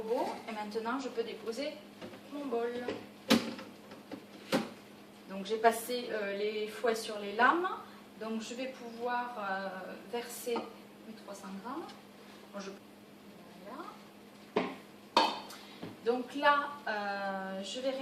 et maintenant, je peux déposer mon bol. Donc j'ai passé les fouets sur les lames. Donc je vais pouvoir verser mes 300 grammes. Bon, voilà. Donc là, je vais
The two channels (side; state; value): both; identical; correlation 1.00